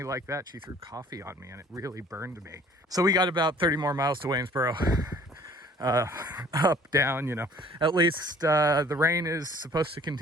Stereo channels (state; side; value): normal; both; correlation 0.53